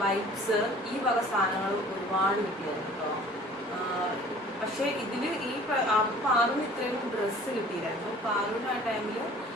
വൈപ്സ്, ഈ വക സാധനങ്ങൾ ഒരുപാട് കിട്ടിയായിരുന്നു കേട്ടോ. പക്ഷേ ഇതിൽ ഈ പാറുവിന് ഇത്രയും ഡ്രസ്സ് കിട്ടിയില്ലായിരുന്നു. പാറുവിന് ആ ടൈമിൽ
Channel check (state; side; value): normal; both; correlation 0.49